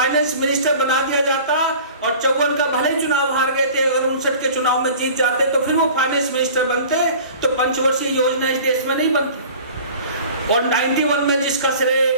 मिनिस्टर बना दिया जाता और 54 का भले चुनाव हार गए थे, अगर 59 के चुनाव में जीत जाते तो फिर वो फाइनेंस मिनिस्टर बनते, तो पंचवर्षीय योजना इस देश में नहीं बनती। और 91 में जिसका श्रेय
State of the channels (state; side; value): inverted; both; correlation -0.43